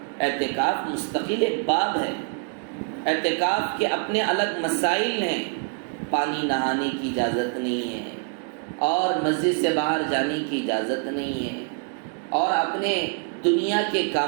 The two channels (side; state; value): left; quieter; 39.3 dB